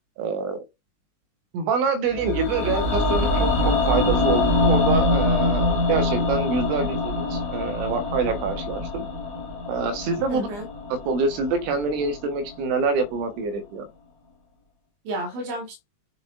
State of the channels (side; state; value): left; late; 20 ms